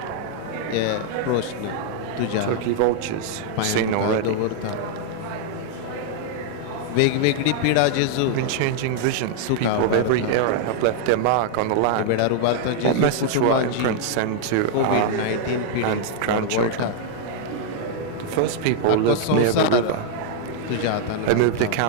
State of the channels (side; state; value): both; different; correlation -0.01